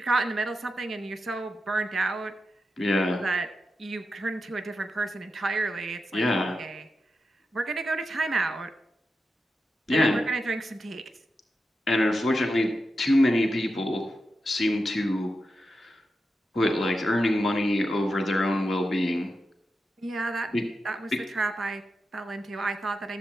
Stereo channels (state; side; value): normal; both; correlation 0.89